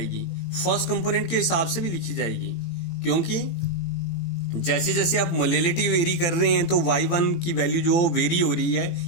फर्स्ट कंपोनेंट के हिसाब से भी लिखी जाएगी. क्योंकि जैसे जैसे आप मोलैलिटी वेरी कर रहे हैं तो y1 की वैल्यू जो वेरी हो रही है,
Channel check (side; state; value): right; late; 18 ms